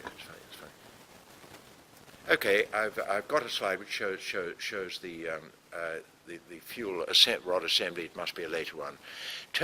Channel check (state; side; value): identical; both; correlation 1.00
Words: That's funny. That's funny. Okay, I've got a slide which shows the fuel rod assembly. It must be a later one.